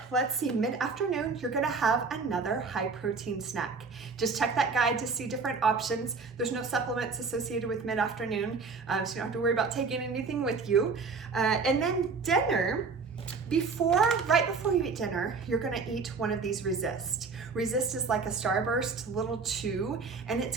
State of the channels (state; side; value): quieter; left; 4.7 dB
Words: let's see, mid-afternoon, you're gonna have another high protein snack. Just check that guide to see different options. There's no supplements associated with mid-afternoon, so you don't have to worry about taking anything with you. And then dinner, right before you eat dinner, you're gonna eat one of these Resist. Resist is like a Starburst little chew, and it's